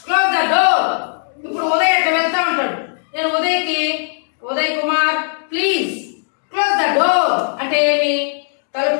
the door. ఇప్పుడు ఉదయ్ అట్లా వెళ్తా ఉంటాడు. నేను Uday Kumar please close the door అంటే ఏమి?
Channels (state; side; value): silent; right; digital silence